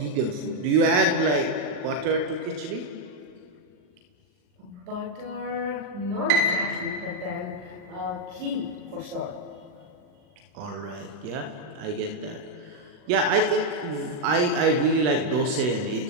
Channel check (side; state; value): left; late; 40 ms